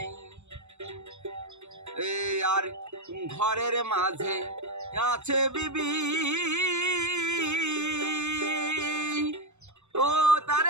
আর ঘরের মাঝে আছে বিবি, ও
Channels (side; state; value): left; late; 0.82 ms